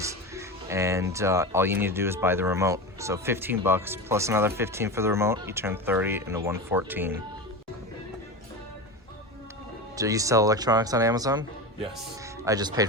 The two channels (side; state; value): both; normal; correlation 0.24